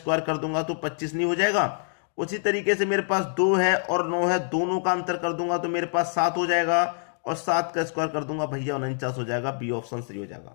कर दूंगा तो 25 नहीं हो जाएगा। उसी तरीके से मेरे पास 2 है और 9 है, दोनों का अंतर कर दूंगा तो मेरे पास 7 हो जाएगा, और 7 का स्क्वायर कर दूंगा भैया 49 हो जाएगा। बी ऑप्शन सही हो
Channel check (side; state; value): right; silent; digital silence